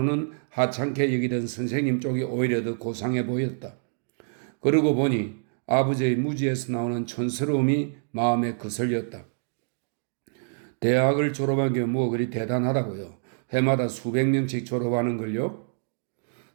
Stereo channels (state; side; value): silent; left; digital silence